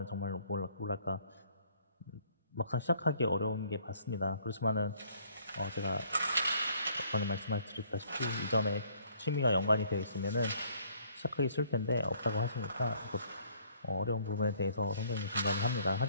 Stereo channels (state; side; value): inverted; both; correlation -0.62